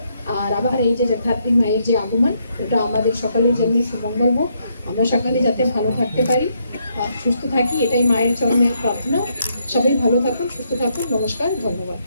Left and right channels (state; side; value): inverted; both; correlation -0.75